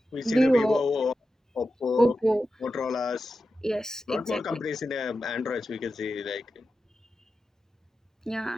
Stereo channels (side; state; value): both; normal; correlation 0.91